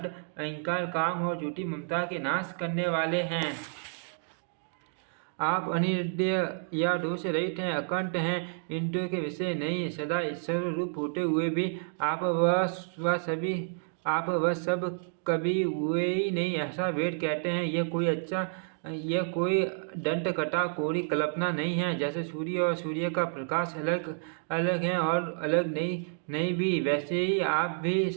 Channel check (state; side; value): silent; left; digital silence